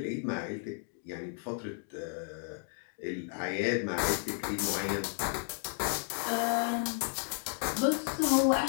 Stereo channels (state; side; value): silent; right; 56 dB below the other